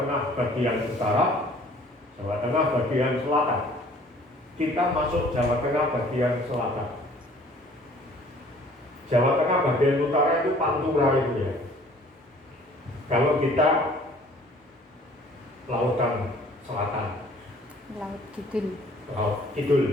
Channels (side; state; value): both; normal; correlation 0.54